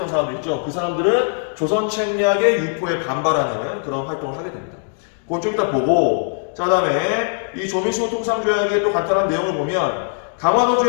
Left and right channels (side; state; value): right; silent; digital silence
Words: 사람들 있죠. 그 사람들은 조선 책략의 유포에 반발하는 그런 활동을 하게 됩니다. 그건 좀 이따 보고, 자, 다음에 이 조미수호 통상 조약의 또 간단한 내용을 보면 강화도